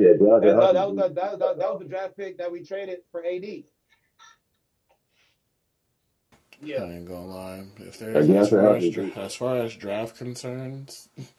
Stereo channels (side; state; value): both; identical; correlation 1.00